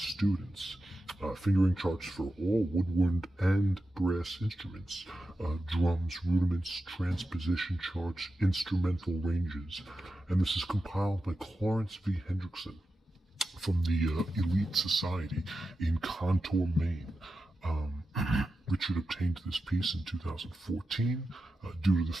Fingering charts for all woodwind and brass instruments, drums, rudiments, transposition charts, instrumental ranges, and this is compiled by Clarence v. Hendrickson from the Elite Society in Contour, Maine. Richard obtained this piece in 2014 due to the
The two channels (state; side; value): normal; both; correlation 0.91